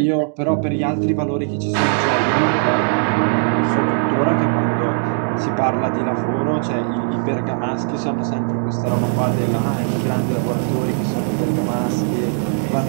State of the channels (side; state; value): left; silent; 58 dB below the other